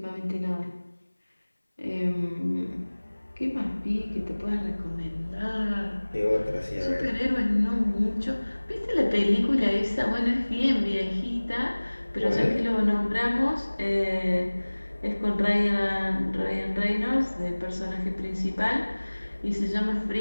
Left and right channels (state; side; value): inverted; both; correlation -1.00